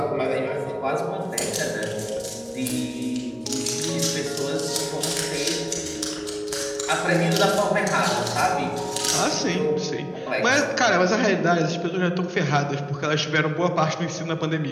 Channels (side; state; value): both; identical; correlation 1.00